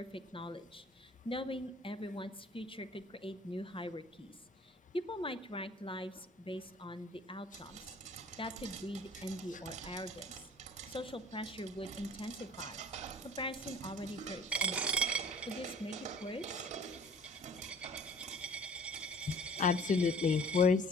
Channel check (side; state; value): both; normal; correlation 0.50